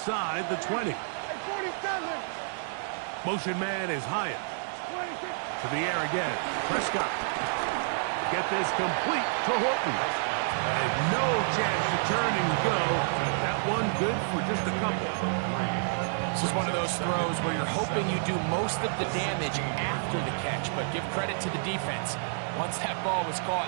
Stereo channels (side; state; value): left; silent; digital silence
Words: the 20. 47. Motion man is Hyatt. To the air again. Prescott. Get this complete to Horton. And no chance to turn and go. That one good for just a couple. This is one of those throws where you're hoping you do most of the damage after the catch, but give credit to the defense. Once that ball was caught,